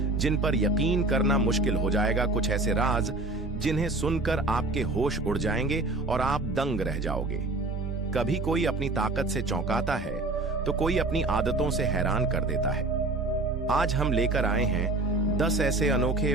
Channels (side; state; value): left; quieter; 3.1 dB